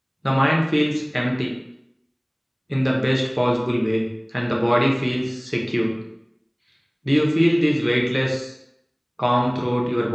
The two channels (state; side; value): identical; both; correlation 1.00